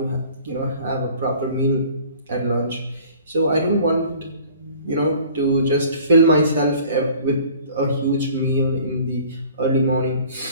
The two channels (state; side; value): inverted; both; correlation -0.49